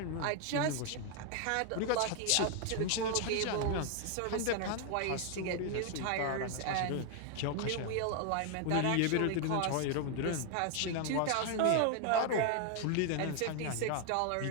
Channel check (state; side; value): different; both; correlation 0.00